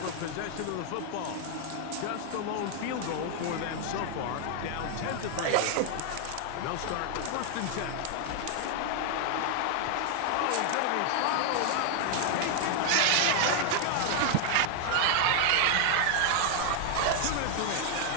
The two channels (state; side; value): different; both; correlation 0.00